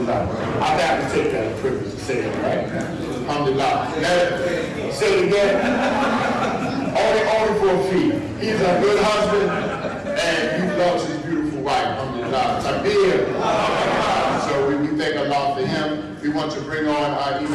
I have to take that privilege to say it, right? Alhamdulillah. Say it again. Only for a fee. He's a good husband and he loves his beautiful wife. Alhamdulillah. Takbir. So we thank Allah for him. We want to bring on our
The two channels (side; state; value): both; identical; correlation 1.00